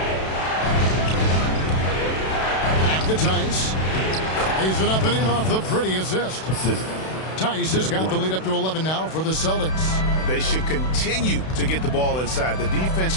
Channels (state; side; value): late; right; 32 ms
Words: Back to Tice. Lays it up and in off the pretty assist. Tice has got the lead up to 11 now for the Celtics. They should continue to get the ball inside. The defense